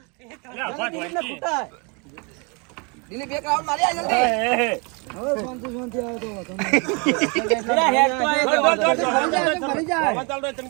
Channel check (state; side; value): quieter; left; 32.4 dB